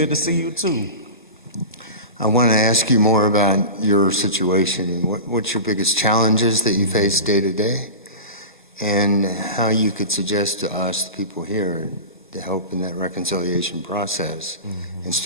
to see you too. I want to ask you more about your situation and what's your biggest challenges that you face day to day, and how you could suggest to us, the people here, to help in that reconciliation process and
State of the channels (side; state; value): both; inverted; correlation -0.30